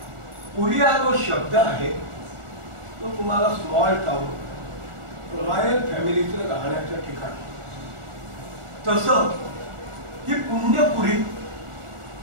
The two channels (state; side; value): late; left; 1.5 ms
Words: पुरी हा जो शब्द आहे तो तुम्हाला स्मॉल टाउन, रॉयल फॅमिलीचं राहण्याचं ठिकाण. तसं ही पुण्यपुरी